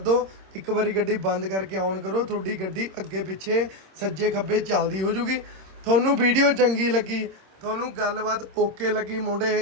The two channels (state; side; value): late; left; 26 ms